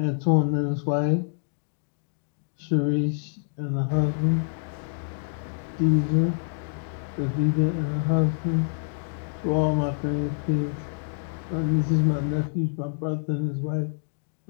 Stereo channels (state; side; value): silent; right; digital silence